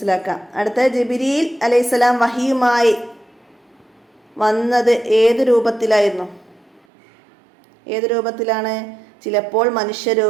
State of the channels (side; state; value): left; drops out; at 6.8 s